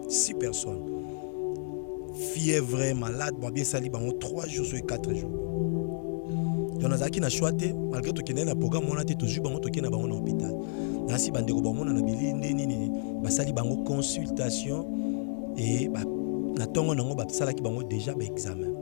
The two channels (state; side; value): silent; right; digital silence